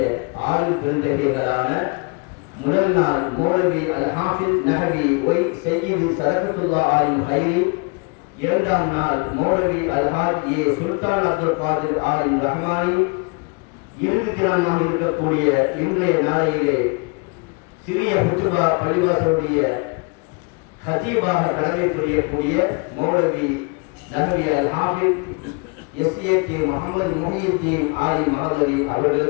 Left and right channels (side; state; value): right; quieter; 31.4 dB